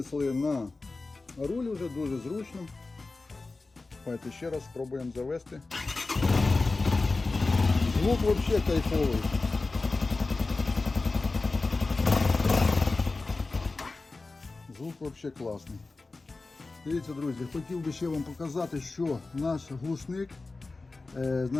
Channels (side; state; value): right; quieter; 3.6 dB